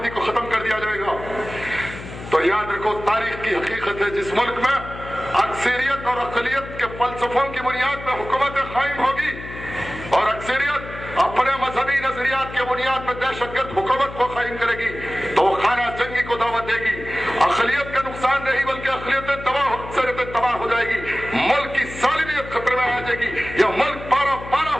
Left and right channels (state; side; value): noise; left; hum, 12 dB below the sound